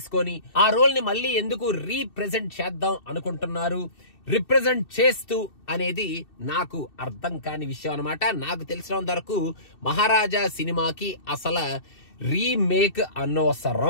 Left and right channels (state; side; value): late; right; 2.7 ms